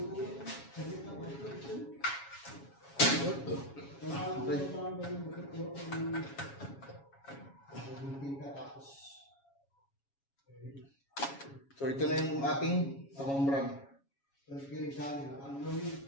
so ito na yung ating takumbran. Nakabili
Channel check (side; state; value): right; late; 7.2 ms